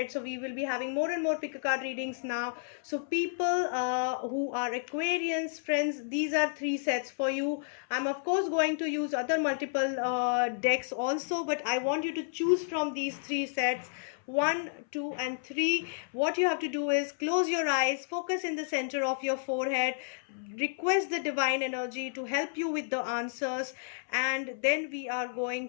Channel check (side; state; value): right; silent; 57 dB below the other